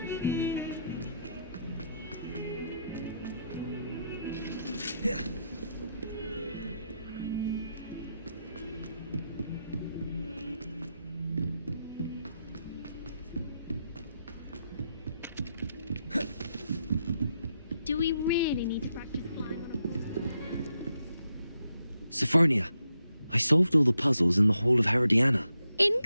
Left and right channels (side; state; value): both; inverted; correlation -0.82